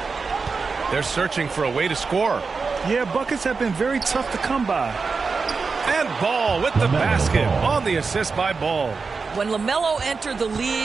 They're searching for a way to score. Yeah, buckets have been very tough to come by. And Ball with the basket on the assist by Ball. When LaMelo entered the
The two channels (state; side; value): quieter; left; 4.7 dB